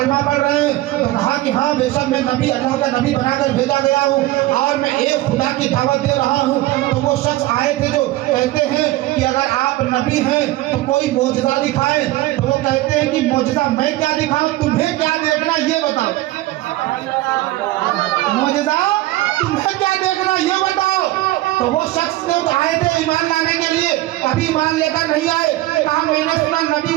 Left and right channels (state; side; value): quieter; left; 17.2 dB